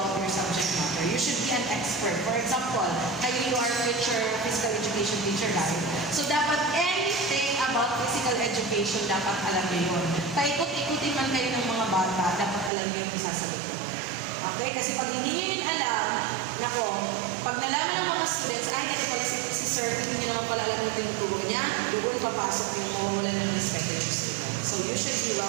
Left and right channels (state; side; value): drops out; left; at 12.7 s